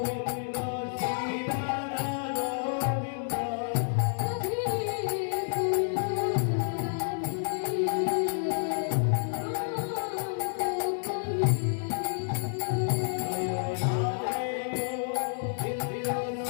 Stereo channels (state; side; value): silent; right; digital silence